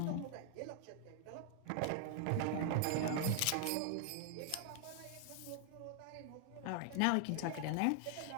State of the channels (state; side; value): different; both; correlation 0.00